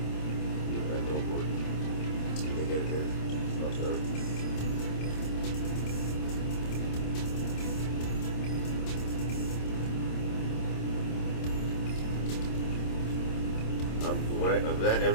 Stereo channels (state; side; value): late; right; 26 ms